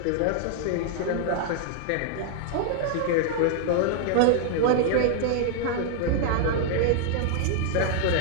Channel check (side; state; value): both; different; correlation 0.00